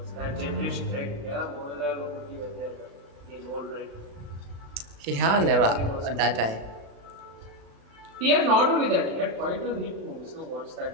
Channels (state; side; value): late; left; 36 ms